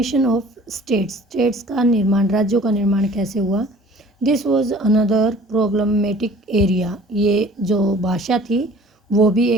of states, states का निर्माण, राज्यों का निर्माण कैसे हुआ। This was another problematic area, ये जो भाषा थी वो भी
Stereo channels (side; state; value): both; normal; correlation 0.49